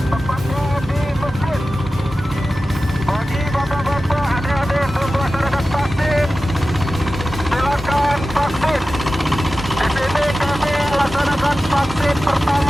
tepatnya di masjid. Bagi bapak-bapak, adik-adik belum melaksanakan vaksin, silakan vaksin. Di sini kami melaksanakan vaksin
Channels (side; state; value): both; normal; correlation 0.95